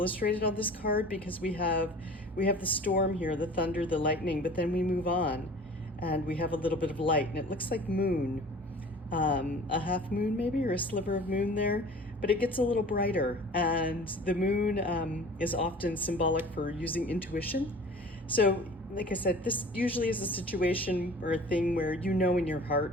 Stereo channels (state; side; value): normal; both; correlation 0.44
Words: on this card, because we have the storm here, the thunder, the lightning, but then we move on and we have a little bit of light, and it looks like moon, a half moon maybe, or a sliver of moon there, but it gets a little brighter. And the moon is often symbolic for using intuition. So like I said, this usually is a situation or a thing where in your